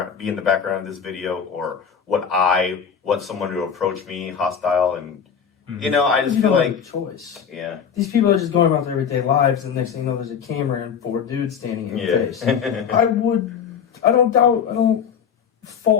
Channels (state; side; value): quieter; right; 7.3 dB